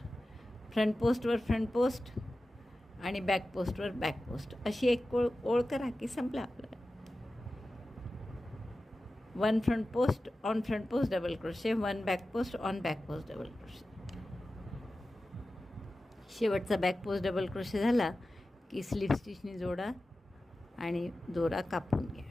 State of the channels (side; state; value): both; normal; correlation 0.94